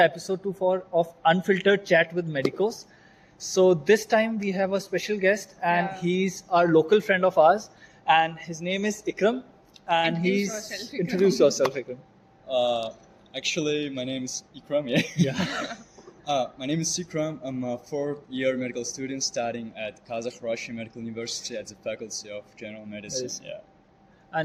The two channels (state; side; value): identical; both; correlation 1.00